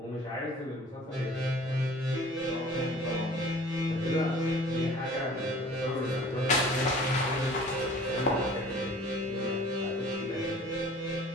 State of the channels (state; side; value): normal; both; correlation 0.48